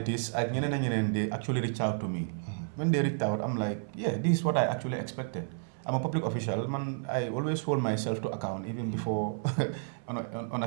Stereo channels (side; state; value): left; silent; 56 dB below the other